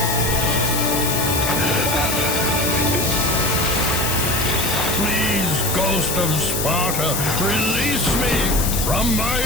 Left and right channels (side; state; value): left; noise; hiss, 2 dB below the sound